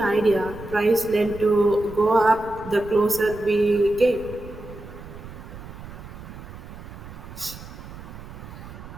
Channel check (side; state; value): right; noise; rumble, 14 dB below the sound